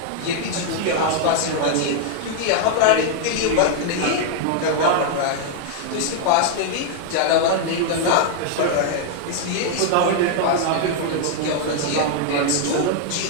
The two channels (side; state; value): both; different; correlation 0.00